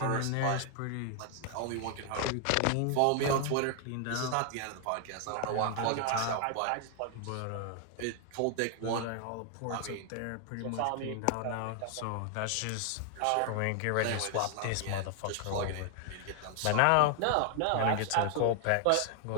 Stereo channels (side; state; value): both; different; correlation 0.00